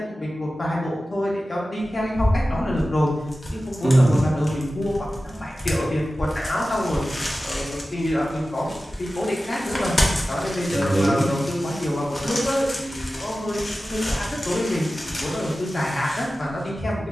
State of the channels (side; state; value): both; normal; correlation 0.95